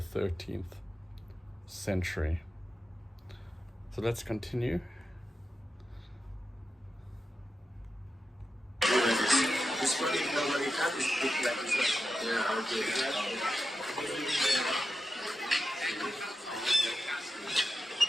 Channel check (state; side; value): normal; both; correlation 0.90